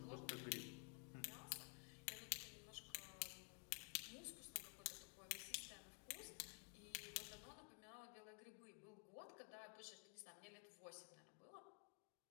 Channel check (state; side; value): quieter; right; 39.1 dB